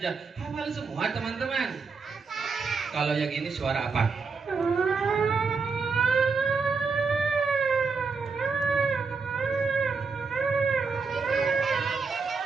Hafal semua teman-teman. Kalau yang ini suara apa?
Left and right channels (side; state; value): left; quieter; 4.8 dB